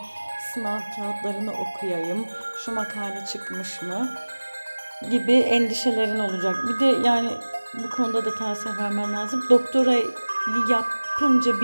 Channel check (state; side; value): inverted; both; correlation -1.00